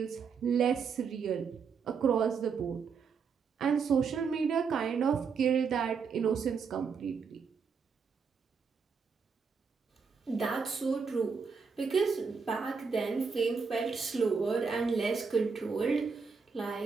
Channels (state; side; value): quieter; left; 5.6 dB